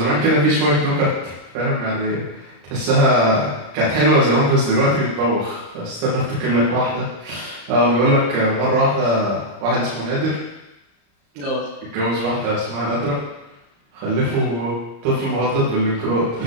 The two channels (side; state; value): left; late; 35 ms